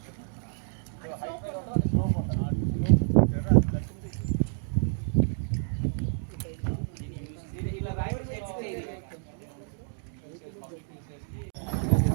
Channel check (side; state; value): left; silent; digital silence